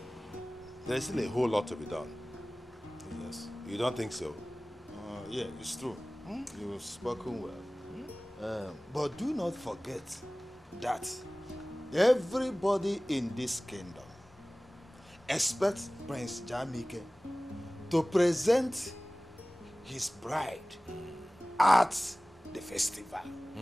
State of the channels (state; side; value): normal; both; correlation 0.98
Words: There's still a whole lot to be done. Yes. You don't think so? Yeah, it's true. You've spoken well. But do not forget that everybody in this kingdom expects Prince Jamike to present his bride at the festival.